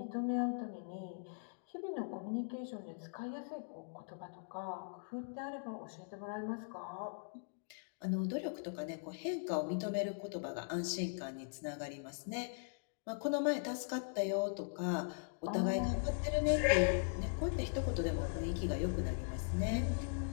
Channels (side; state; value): right; silent; digital silence